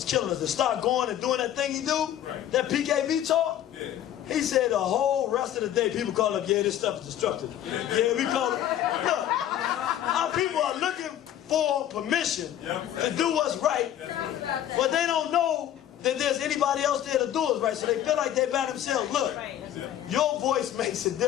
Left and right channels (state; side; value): quieter; right; 11.4 dB